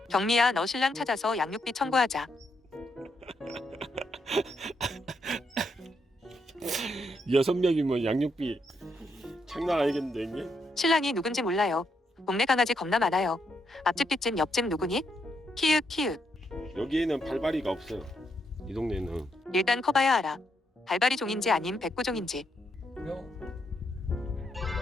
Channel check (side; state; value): both; normal; correlation 0.78